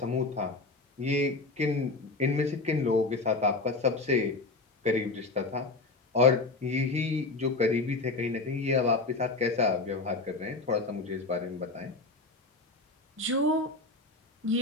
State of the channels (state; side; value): quieter; right; 3.4 dB